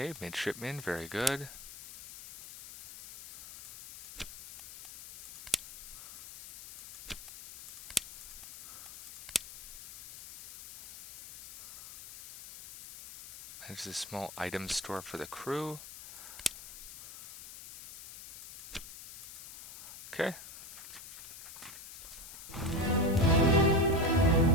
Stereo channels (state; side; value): noise; left; hiss, 14 dB below the sound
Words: midshipman, very good. There's a small item store for the crew. Okay.